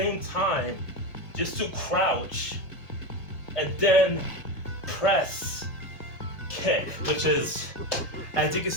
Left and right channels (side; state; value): right; late; 1.6 ms